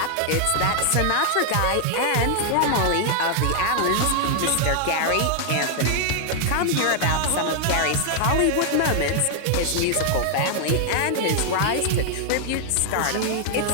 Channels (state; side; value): different; both; correlation 0.00